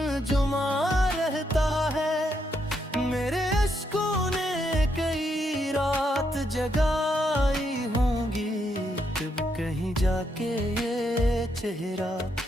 जुमा रहता है। मेरे अश्कों ने कई रात जगाई होंगी, जब कहीं जाके ये चेहरा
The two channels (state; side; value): normal; both; correlation 0.78